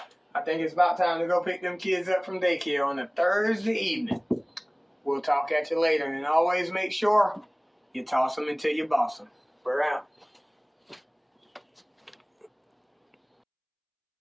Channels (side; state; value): both; identical; correlation 1.00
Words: I think it's about time to go pick them kids up from daycare on a Thursday evening. We'll talk at you later, and always make sure you toss them until you boss them. We're out.